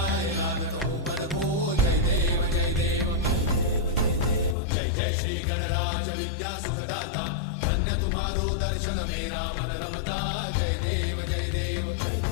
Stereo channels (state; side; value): drops out; right; at 4.5 s